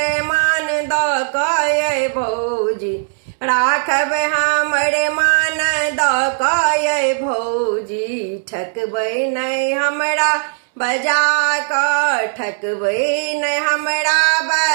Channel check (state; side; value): silent; left; 68 dB below the other